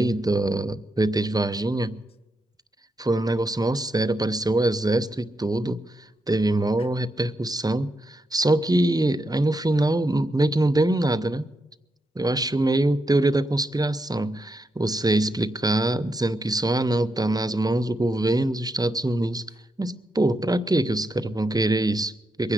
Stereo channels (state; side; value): normal; both; correlation 0.83